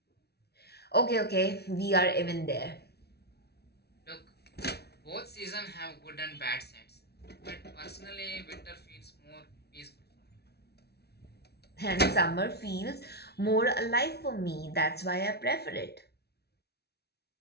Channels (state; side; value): late; right; 0.48 ms